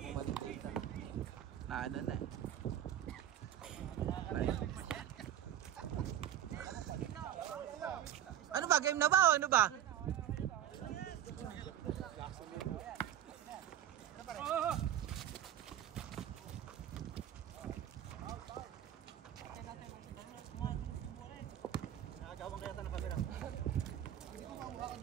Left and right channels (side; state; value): left; quieter; 11.1 dB